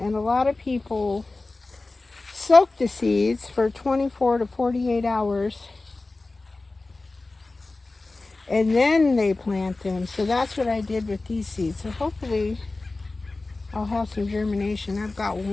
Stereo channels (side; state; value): right; quieter; 3.3 dB